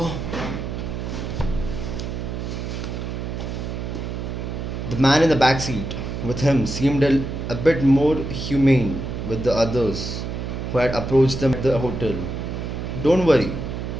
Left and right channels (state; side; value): noise; right; hum, 5 dB below the sound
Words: The man in the back seat with him seemed a bit more humane with the others who had approached them at the hotel. Don't worry,